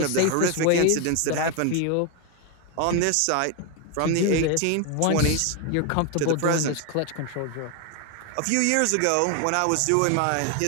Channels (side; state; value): both; different; correlation 0.01